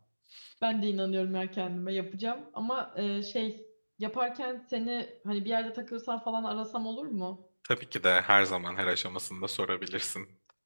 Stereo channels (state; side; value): inverted; both; correlation -1.00